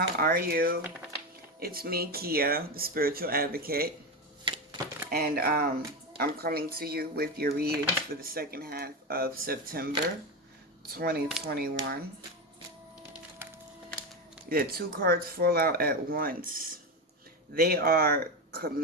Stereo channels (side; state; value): both; normal; correlation 0.16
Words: are you? It's me, Kia, the spiritual advocate, and I'm coming to you with your readings for the second half of September 2021. The two cards fall out at once. They are